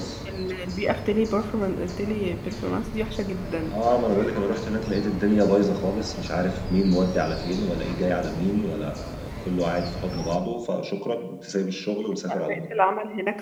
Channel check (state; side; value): identical; both; correlation 1.00